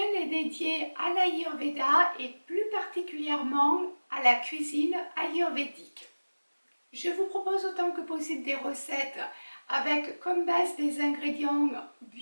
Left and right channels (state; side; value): inverted; both; correlation -1.00